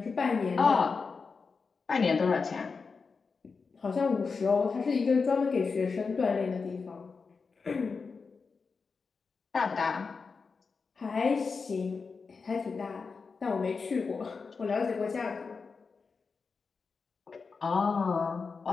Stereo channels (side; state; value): right; quieter; 4.9 dB